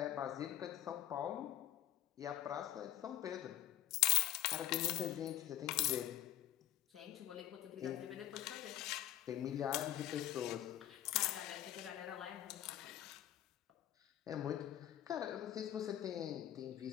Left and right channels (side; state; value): right; quieter; 13.1 dB